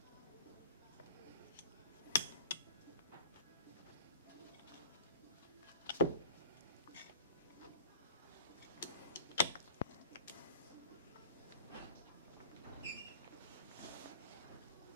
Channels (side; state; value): both; inverted; correlation -0.44